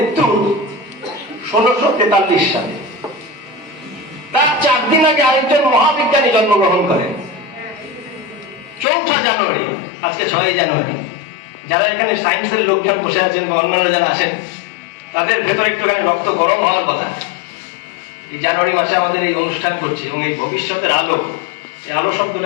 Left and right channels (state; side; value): drops out; right; at 8.8 s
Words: 1643 সালে। তার 4 দিন আগে আরেকজন মহাবিজ্ঞানী জন্মগ্রহণ করেন 4 জানুয়ারি। আজকে 6 জানুয়ারি। যারা এখানে সায়েন্সের লোকজন বসে আছেন বা অন্যান্য যারা আসেন, তাদের ভেতরে একটুখানি রক্ত গরম হওয়ার কথা। এই জানুয়ারি মাসে আমাদের এই অনুষ্ঠান করছি এবং এই ভবিষ্যতের আলো, এই আলো